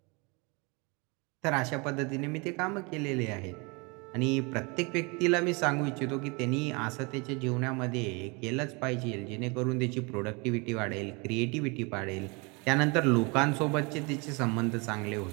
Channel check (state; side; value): quieter; left; 29.4 dB